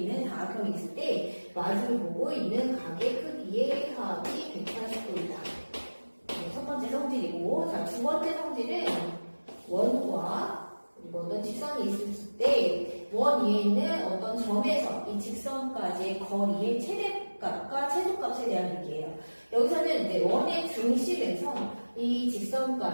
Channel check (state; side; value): inverted; both; correlation -1.00